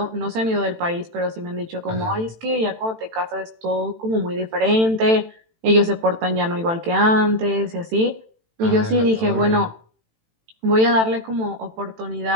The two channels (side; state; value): left; late; 18 ms